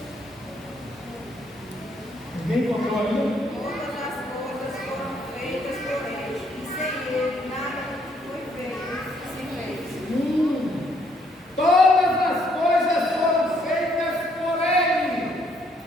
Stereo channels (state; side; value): normal; both; correlation 0.69